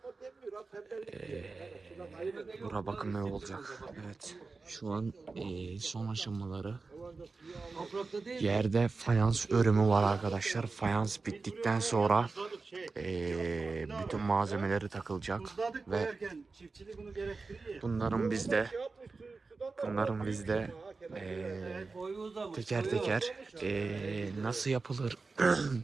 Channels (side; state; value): left; quieter; 4.1 dB